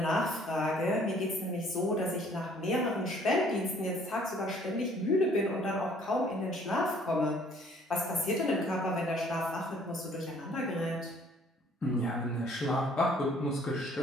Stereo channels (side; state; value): both; normal; correlation 0.58